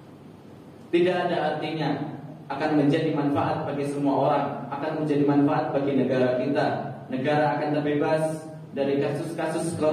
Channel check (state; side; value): identical; both; correlation 1.00